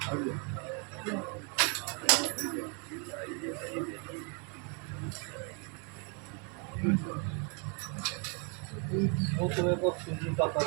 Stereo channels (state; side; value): quieter; left; 35.4 dB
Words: Muito bem, vou fugir para